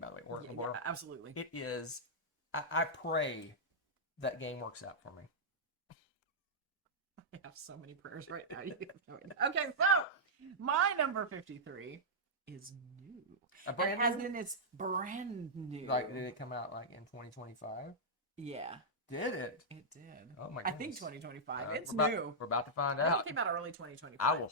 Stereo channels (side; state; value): both; normal; correlation -0.09